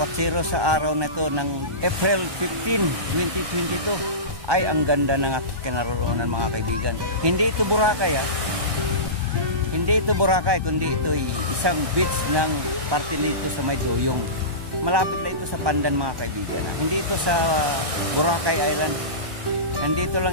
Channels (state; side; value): late; left; 1.2 ms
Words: sa araw na ito ng April 15, 2022. Ay ang ganda ng aking kinaroroonan mga kaibigan. Hindi ito Boracay ha. Hindi ito Boracay, kundi ito ay isang beach ng parte nito sa May Doyong. Malapit lang ito sa Pandan mga kaibigan ha. Hindi ito sa Boracay Island. Nandito